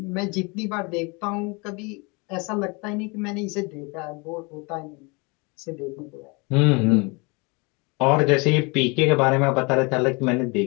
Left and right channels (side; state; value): right; quieter; 29.2 dB